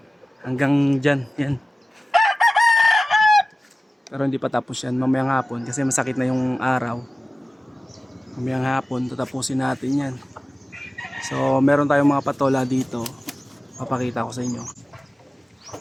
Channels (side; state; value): both; normal; correlation 0.97